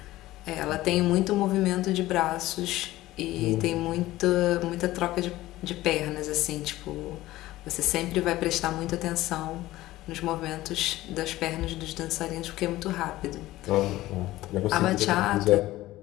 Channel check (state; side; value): quieter; right; 16.6 dB